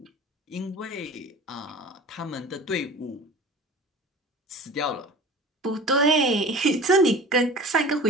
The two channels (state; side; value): normal; both; correlation 0.40